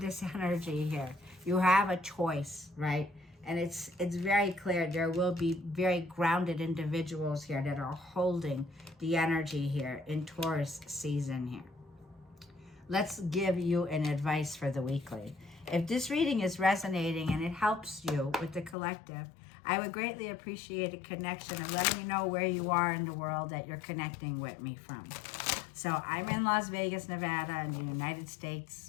energy here, you have a choice, right? And it's very clear there will be very grounded individuals here that are holding the energy here in Taurus season here. Let's give you an advice for the weekly. If this reading is resonating and it helps you with the collective, I would greatly appreciate a connection of letting me know where you are in the world that you're connecting with me from. So I'm in Las Vegas, Nevada in the United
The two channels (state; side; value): drops out; right; at 18.8 s